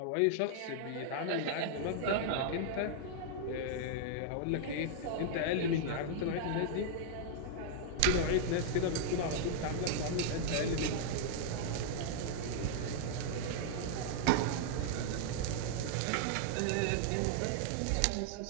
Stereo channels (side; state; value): both; different; correlation -0.01